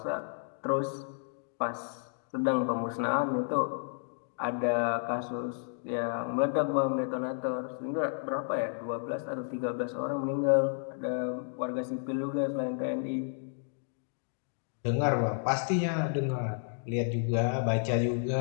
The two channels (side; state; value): right; silent; digital silence